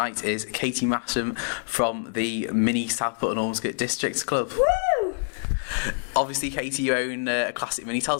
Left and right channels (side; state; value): right; silent; digital silence